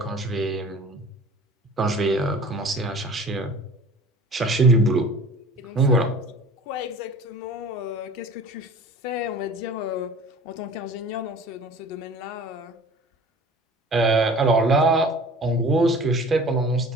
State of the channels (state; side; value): normal; both; correlation 0.43